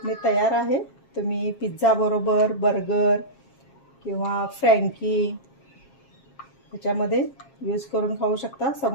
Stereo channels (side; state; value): right; late; 7.4 ms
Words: तयार आहे. तुम्ही पिझ्झा बरोबर, बर्गर किंवा फ्रँकी ह्याच्यामध्ये यूज करून खाऊ शकता.